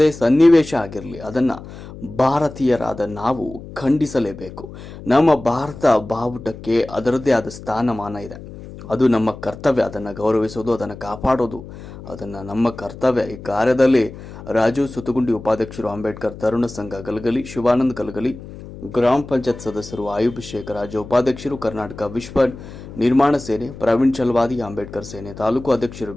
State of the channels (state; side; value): noise; left; hum, 14 dB below the sound